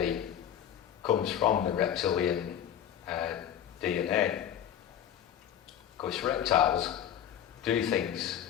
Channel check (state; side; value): quieter; right; 10.0 dB